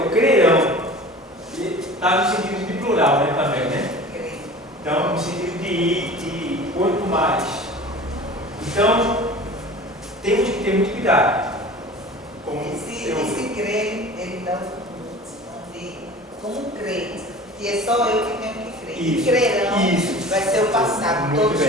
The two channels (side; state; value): both; normal; correlation 0.40